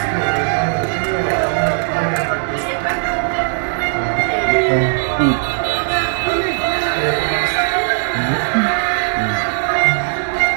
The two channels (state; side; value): silent; left; 68 dB below the other